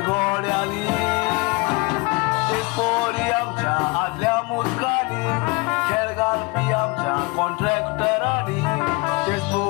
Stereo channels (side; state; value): right; quieter; 26.2 dB